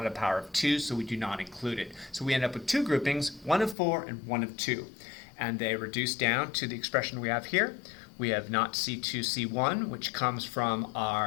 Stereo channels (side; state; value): right; drops out; at 3.8 s